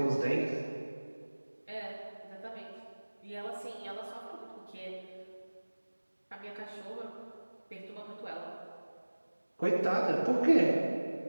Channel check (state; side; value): inverted; both; correlation -1.00